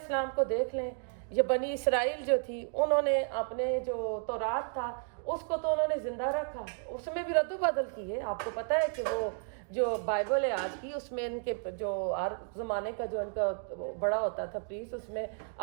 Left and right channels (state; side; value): silent; left; 56 dB below the other